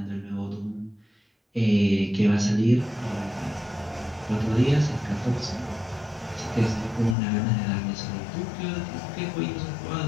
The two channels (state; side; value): drops out; right; at 7.2 s